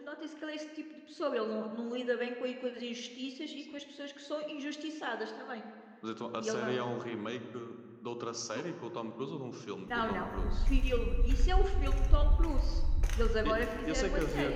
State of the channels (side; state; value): both; identical; correlation 1.00